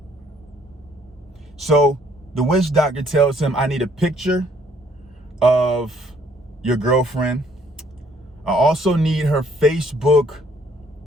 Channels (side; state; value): both; normal; correlation 0.64